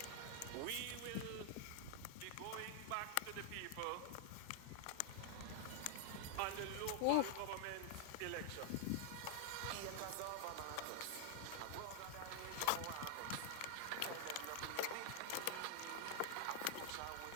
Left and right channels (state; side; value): different; both; correlation 0.00